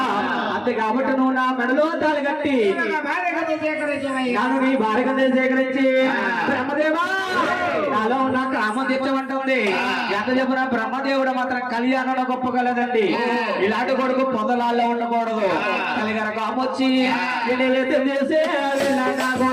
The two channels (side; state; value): both; identical; correlation 1.00